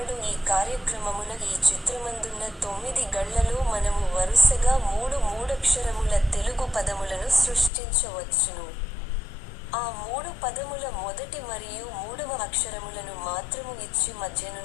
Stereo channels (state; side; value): drops out; right; at 7.7 s